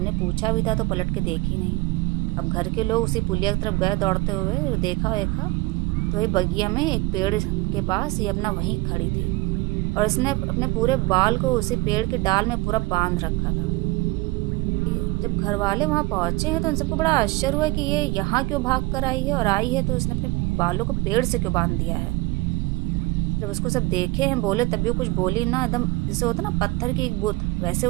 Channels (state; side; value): quieter; left; 22.4 dB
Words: पूछा भी था तो पलट के देखी नहीं। अब घर के लोग उसी पुलिया की तरफ गए दौड़ते हुए, देखा तो ये बगिया में एक पेड़ के पास ये अपना वहीं खड़ी थी, और इसने अपने पूरे बाल को उसी पेड़ के डाल में पूरा बांध रखा था। जब घर वाले वहाँ पहुँचे हैं तो उन सबको बड़ा आश्चर्य हुआ कि ये यहाँ क्यों भाग कर आई है, और आई है तो उसने अपने बालों को पेड़ से क्यों बांध दिया है। जब उसको सब देखे हैं, बोले, तभी वो कुछ बोली ना, एकदम जैसे होता ना पत्थर की एक बुत, वैसे